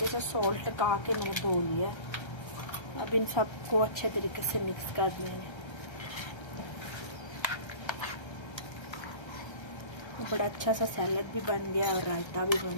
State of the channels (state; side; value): late; right; 1.3 ms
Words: से सॉल्ट लगा के मैंने धो लिया। अब इन सबको अच्छे तरीके से मिक्स कर देंगे। बड़ा अच्छा सा सैलड भी बन गया और रायता भी बन